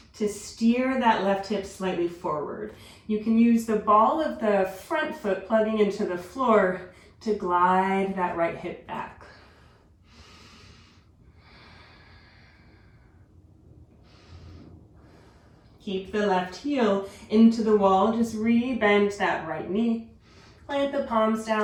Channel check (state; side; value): identical; both; correlation 1.00